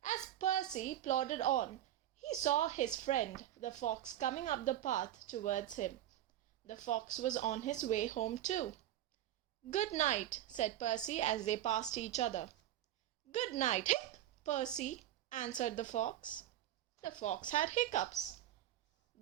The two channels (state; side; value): quieter; left; 12.6 dB